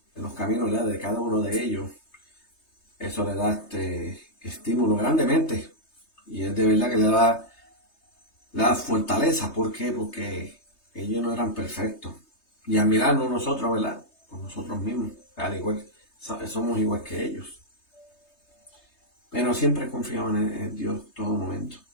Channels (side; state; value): right; late; 3.2 ms